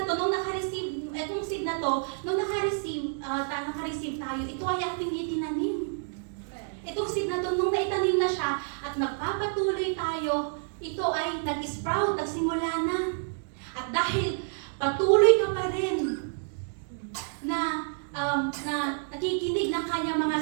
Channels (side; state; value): left; silent; digital silence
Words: to, nung naka-receive tayo, ito ay ating itinanim. Itong seed na to, nung naitanim na siya at nagpapatuloy tayo, ito ay nag-sprout, nagsimula na. At dahil patuloy ka pa rin na nakikinig ng kanyang mga